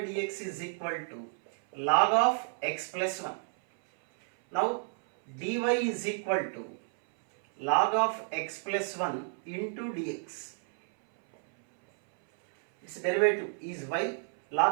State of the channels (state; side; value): silent; left; 57 dB below the other